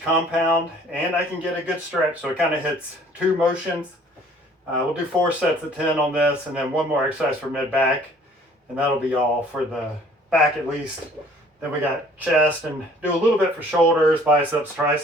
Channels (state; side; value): normal; both; correlation 0.55